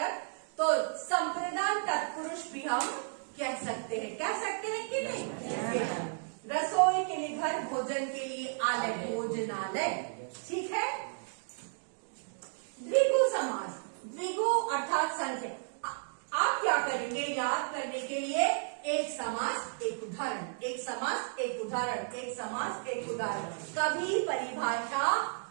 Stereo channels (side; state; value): left; silent; digital silence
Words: तो संप्रदान तत्पुरुष भी हम कह सकते हैं कि नहीं? रसोई के लिए घर, भोजन के लिए आलय, भोजनालय। ठीक है। द्विगु समास, द्विगु अर्थात संख्या। आप क्या करेंगे, याद करने के लिए एक समास एक उदाहरण, एक समास एक उदाहरण, एक समास एक उदाहरण, कभी परिभाषा